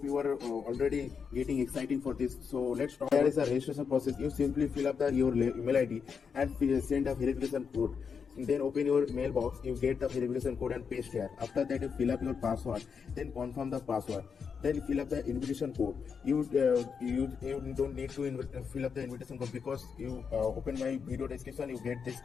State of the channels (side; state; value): right; quieter; 6.2 dB